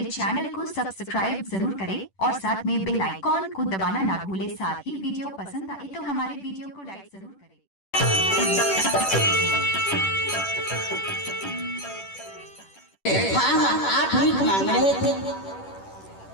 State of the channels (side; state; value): right; late; 10 ms